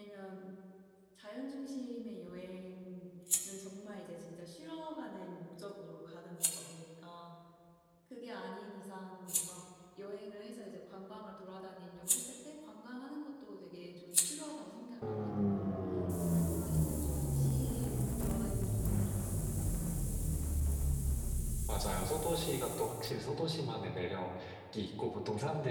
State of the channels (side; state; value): both; identical; correlation 1.00